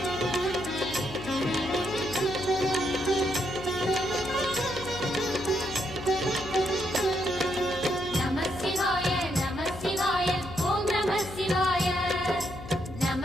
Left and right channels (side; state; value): left; noise; hum, 12 dB below the sound